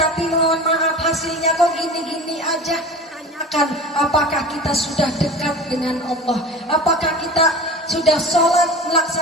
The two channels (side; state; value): both; normal; correlation 0.35